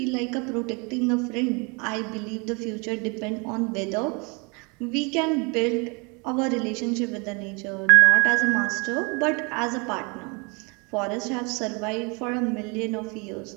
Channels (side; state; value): left; quieter; 30.9 dB